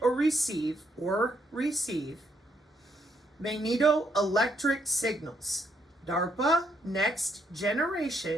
or receive magneto-electric signals. DARPA, next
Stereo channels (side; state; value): both; normal; correlation 0.75